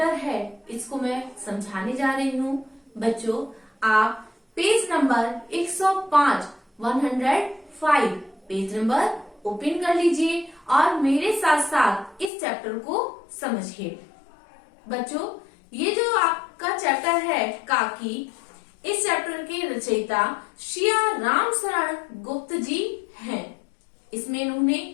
है इसको मैं समझाने जा रही हूँ। बच्चों, आप page number 105 page number open कर लीजिए और मेरे साथ साथ इस चैप्टर को समझिए। बच्चों, ये जो आपका चैप्टर है काकी, इस चैप्टर के रचयिता श्रिया राम शरण गुप्त जी हैं। इसमें इन्होंने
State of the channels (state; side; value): drops out; right; at 12.3 s